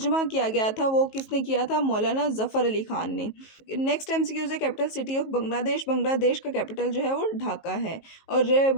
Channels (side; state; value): right; late; 19 ms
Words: किया गया था वो किसने किया था? मौलाना ज़फ़र अली ख़ान ने। नेक्स्ट एमसीक्यूज है, capital city of Bangladesh. Bangladesh का कैपिटल जो है वो ढाका है और